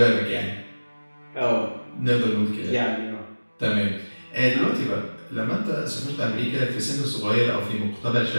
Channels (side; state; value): both; inverted; correlation -1.00